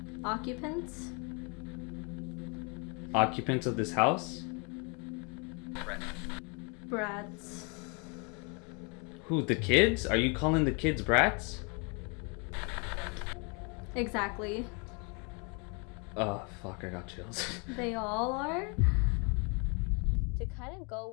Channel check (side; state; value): right; quieter; 33.7 dB